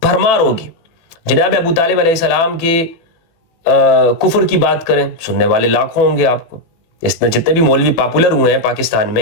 بھرمار ہوگی. جناب ابو طالب علیہ السلام کے کفر کی بات کریں، سننے والے لاکھوں ہوں گے آپ کو. جتنے بھی مولوی پاپولر ہوئے ہیں پاکستان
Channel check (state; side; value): late; right; 18 ms